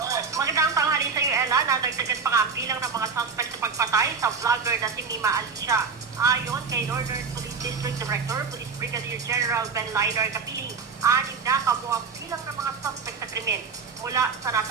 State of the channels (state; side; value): quieter; left; 5.4 dB